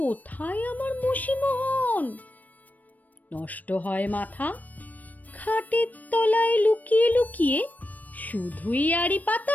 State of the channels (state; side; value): late; right; 0.077 ms